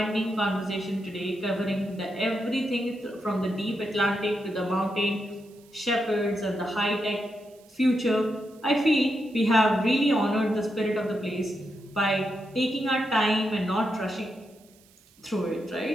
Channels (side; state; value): right; noise; hiss, 29 dB below the sound